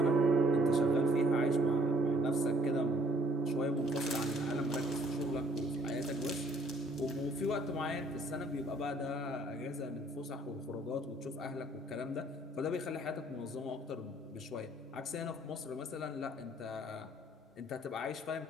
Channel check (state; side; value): normal; both; correlation 0.61